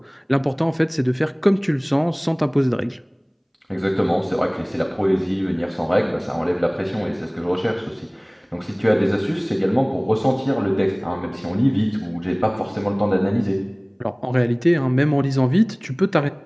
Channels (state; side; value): identical; both; correlation 1.00